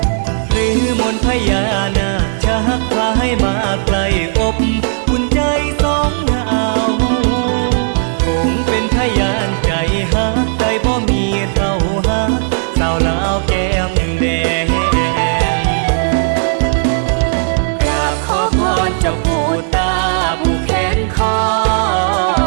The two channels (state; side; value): silent; left; digital silence